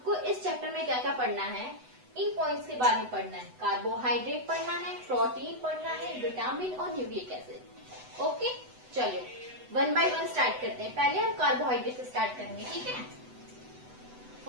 इस चैप्टर में क्या क्या पढ़ना है, इन पॉइंट्स के बारे में पढ़ना है। कार्बोहाइड्रेट पढ़ना है, प्रोटीन पढ़ना है, विटामिन और न्यूक्लिक एसिड। ओके, चलो वन बाय वन स्टार्ट करते हैं। पहले हम कार्बोहाइड्रेट से स्टार्ट करेंगे। ठीक है,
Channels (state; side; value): late; left; 8.0 ms